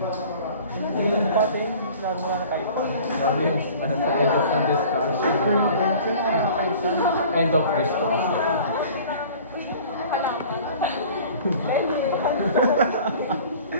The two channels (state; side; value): inverted; both; correlation -0.46